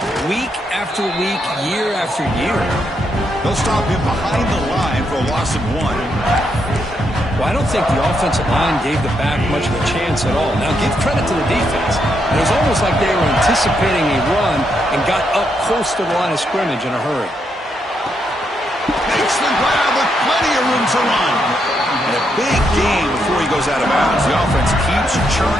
week after week, year after year. They'll stop him behind the line for a loss of 1. Well, I don't think the offensive line gave the back much of a chance at all. Now, give credit to the defense. It was almost like they were anticipating a run and got up close to the line of scrimmage in a hurry. Makes the grab with plenty of room to run. And a big gain before he goes out of bounds. The offense keeps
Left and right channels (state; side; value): normal; both; correlation 0.79